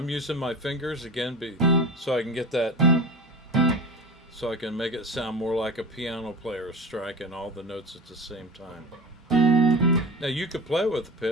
using my fingers again so I can get that, so I can make it sound more like a piano player striking all the notes at the same time. Now you could play with the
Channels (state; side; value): normal; both; correlation 0.31